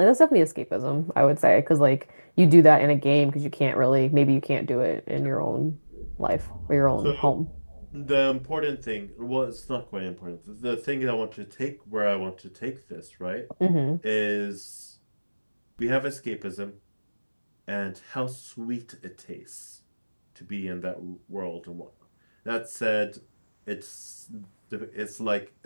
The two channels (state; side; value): inverted; both; correlation -1.00